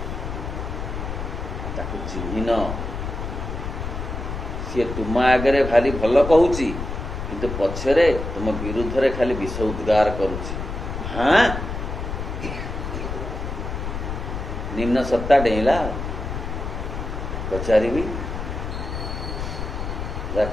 ताकू चिन्हिन सी तुम आगे भारी भल कहूची किंतु पछरे तुम विरुद्ध रे खाली विष उद्गार करुची हाँ निम्न सत्ता डेला पचारि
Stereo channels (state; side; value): noise; left; rumble, 5 dB below the sound